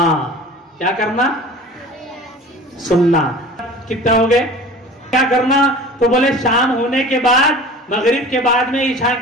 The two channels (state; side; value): normal; both; correlation 0.41